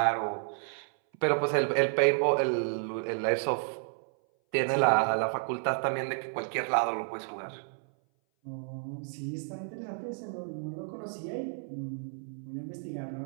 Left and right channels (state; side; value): silent; left; 57 dB below the other